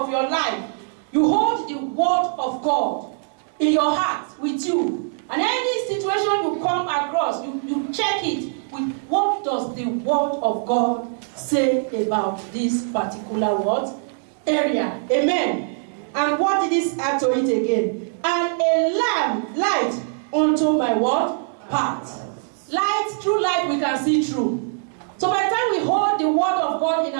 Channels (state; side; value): silent; left; digital silence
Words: your life, you hold the word of God in your heart with you. And any situation you come across, you check it with what does the word of God say about this particular word area. Amen. And what did this add to it again? And a lamp, light unto my what? Path. Light, through light we can see through. So by the time we hold the word of God in